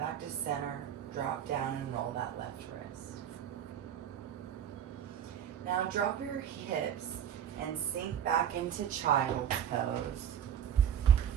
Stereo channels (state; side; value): quieter; left; 9.4 dB